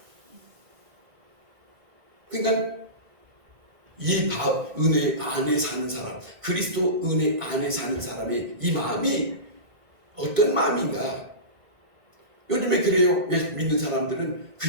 그러니까 이 은혜 안에 사는 사람, 그리스도 은혜 안에 사는 사람의 이 마음이 어떤 마음인가? 요즘에 그래요. 믿는 사람들은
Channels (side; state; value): left; late; 1.9 ms